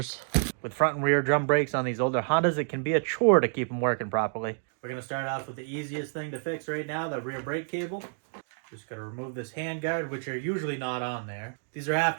With front and rear drum brakes on these older Hondas, it can be a chore to keep them working properly. We're gonna start off with the easiest thing to fix right now, the rear brake cable. Just gotta remove this handguard, which are usually not on there. These are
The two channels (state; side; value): silent; left; digital silence